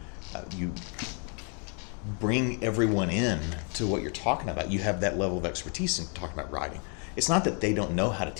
bring everyone in to what you're talking about, you have that level of expertise in talking about writing. It's not that they don't know how to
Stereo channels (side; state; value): right; quieter; 39.3 dB